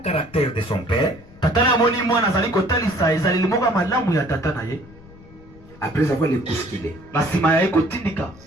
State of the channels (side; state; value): left; noise; rumble, 22 dB below the sound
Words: caractère de son père. Après avoir les bousculé.